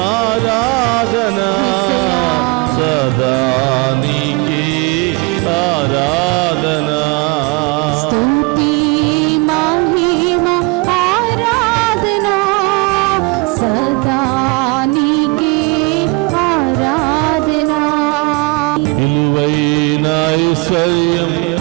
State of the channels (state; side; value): quieter; left; 27.9 dB